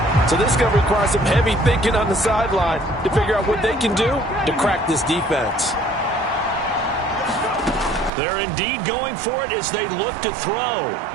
So this is going to require some heavy thinking on the sideline to figure out what they can do to crack this defense. They're indeed going for it as they look to throw.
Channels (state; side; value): drops out; left; at 8.1 s